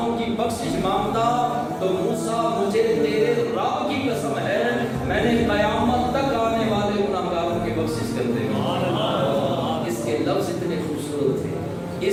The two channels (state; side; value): identical; both; correlation 1.00